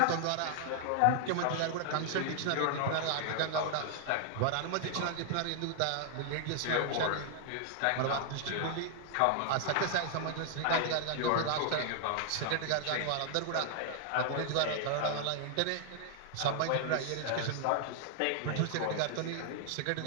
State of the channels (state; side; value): different; both; correlation -0.01